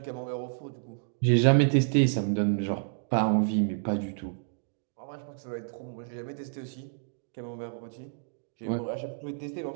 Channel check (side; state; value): left; silent; digital silence